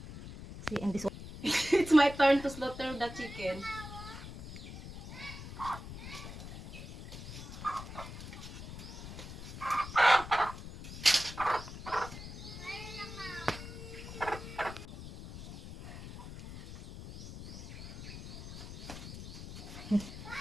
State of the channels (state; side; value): noise; left; rumble, 11 dB below the sound